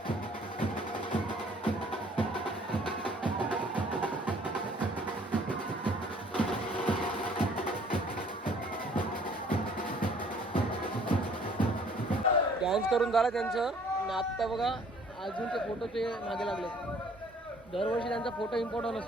डान्स करून झाला त्यांचं. आणि आत्ता बघा अजून ते फोटोचे मागे लागले. दरवर्षी त्यांचा फोटो इम्पॉर्टंट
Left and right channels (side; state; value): both; normal; correlation 0.57